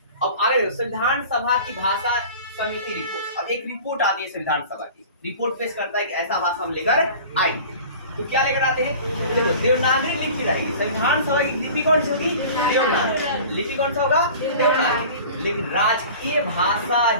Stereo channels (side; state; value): both; inverted; correlation -0.41